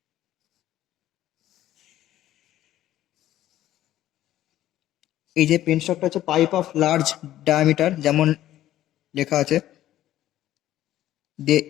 এই যে পেন স্টকটা হচ্ছে পাইপ অফ লার্জ ডায়ামিটার, যেমন লেখা আছে,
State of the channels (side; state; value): right; quieter; 13.4 dB